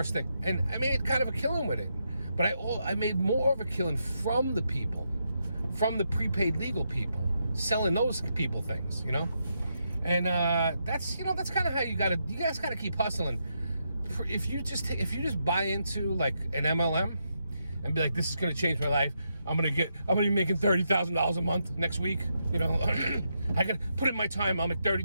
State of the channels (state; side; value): inverted; both; correlation -0.82